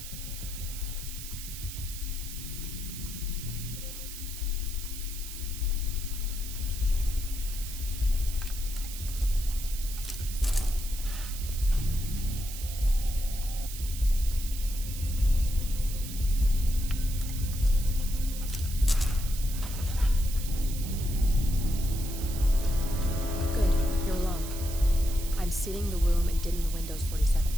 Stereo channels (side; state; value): right; noise; hiss, 10 dB below the sound